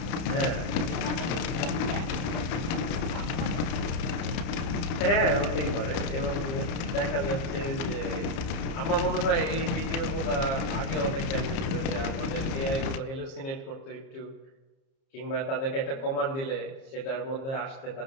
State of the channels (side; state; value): right; late; 31 ms